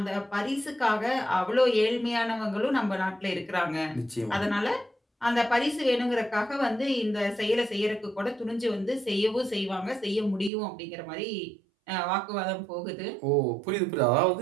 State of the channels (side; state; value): left; drops out; at 10.5 s